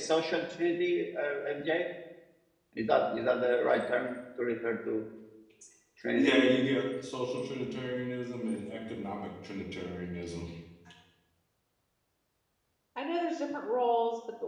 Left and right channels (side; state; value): both; identical; correlation 1.00